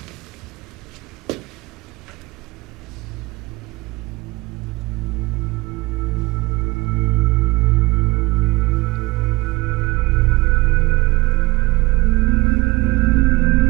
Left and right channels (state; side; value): quieter; left; 22.4 dB